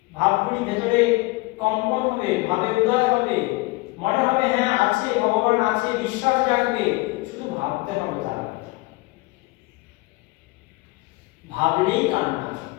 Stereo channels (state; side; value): quieter; right; 23.3 dB